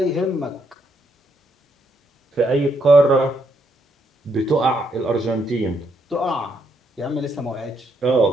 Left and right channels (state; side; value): normal; both; correlation 0.75